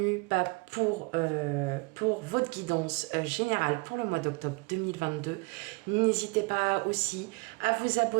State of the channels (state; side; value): quieter; left; 27.9 dB